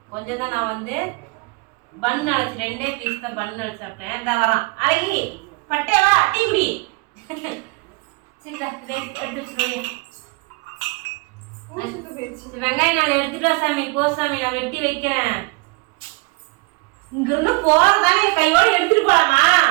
கொஞ்சம் தான் நான் வந்து பன் அழைச்சி 2 பீஸ் தான் பன் அழைச்சி சாப்பிட்டேன். இந்த வரான் அழகி பட்டேவா டீ குடி. சரிதா எடுத்து வச்சுக்கோங்க. வெங்காயம் நான் எடுத்துட்டு வா சாமி. போ சாமி, நான் வெட்டி வைக்கிறேன். இங்கிருந்து போறதானே கையோடு எடுத்துட்டு போலாமா?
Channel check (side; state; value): left; quieter; 25.9 dB